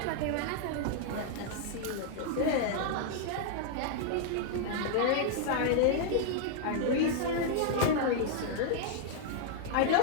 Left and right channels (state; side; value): different; both; correlation 0.00